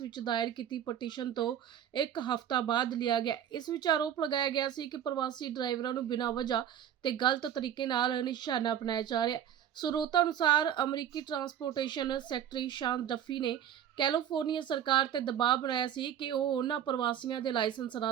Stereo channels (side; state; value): left; quieter; 9.8 dB